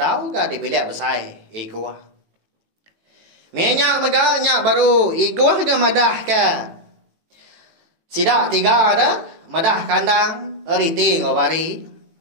ke di bilik besai igua. Minyak mega nyak baru igua ke madah ke. Sidak 3 ada madah kandang eriti ngawari.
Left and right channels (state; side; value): late; left; 18 ms